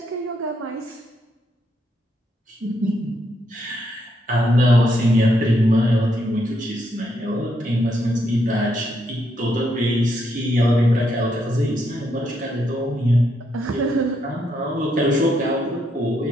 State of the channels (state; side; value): normal; both; correlation 0.77